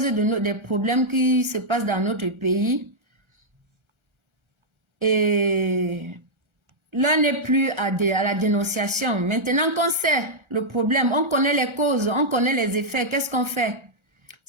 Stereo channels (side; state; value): left; late; 1.3 ms